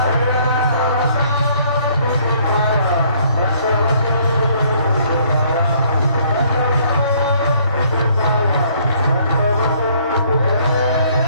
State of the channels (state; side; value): inverted; both; correlation -0.63